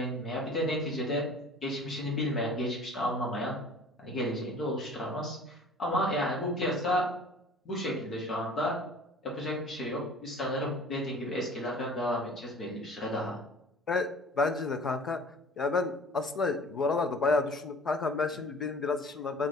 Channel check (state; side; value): normal; both; correlation 0.46